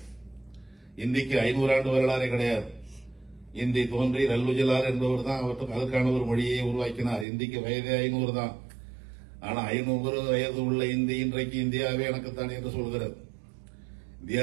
இந்திக்கு 500 ஆண்டு வரலாறே கிடையாது. இந்தி தோன்றி ரல்லுஜிலார் என்பவர் தான் அவற்றுக்கு அதற்கான ஒரு மொழியை உருவாக்கினார். இந்திக்கு வயதே 500 தான். ஆனா 500 வயது உள்ள இந்தி இன்றைக்கு இந்தியாவே எனக்குத்தான் என்று சொல்கிறது.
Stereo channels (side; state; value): left; drops out; at 7.2 s